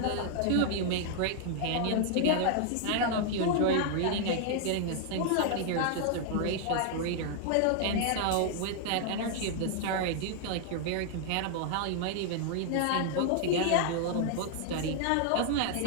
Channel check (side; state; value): both; different; correlation 0.00